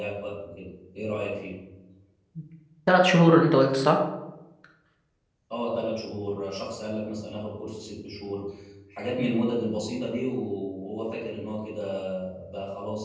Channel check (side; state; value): both; identical; correlation 1.00